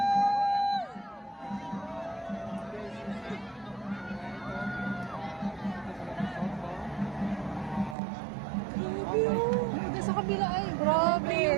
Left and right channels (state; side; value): drops out; left; at 8.0 s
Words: Sa kabila ay